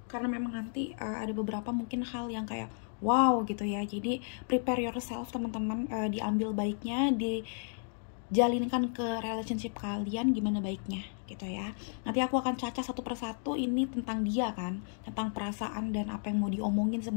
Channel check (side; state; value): right; silent; digital silence